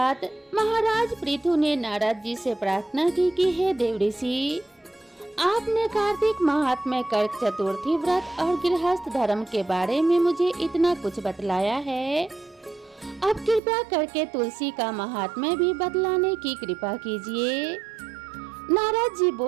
महाराज पृथु ने नारद जी से प्रार्थना की कि हे देव ऋषि, आपने कार्तिक महात्म्य कर्क चतुर्थी व्रत और गृहस्थ धर्म के बारे में मुझे इतना कुछ बतलाया है, अब कृपया करके तुलसी का महात्म्य भी बतलाने की कृपा कीजिए। नारद जी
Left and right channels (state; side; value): drops out; left; at 13.6 s